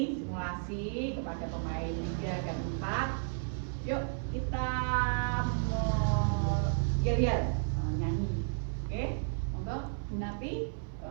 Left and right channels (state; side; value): silent; left; 56 dB below the other